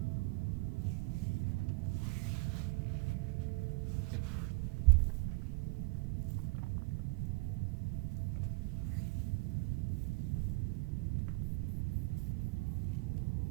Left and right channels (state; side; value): quieter; left; 28.1 dB